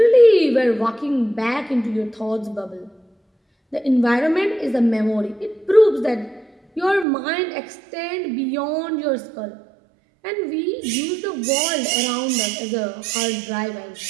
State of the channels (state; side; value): drops out; left; at 7.1 s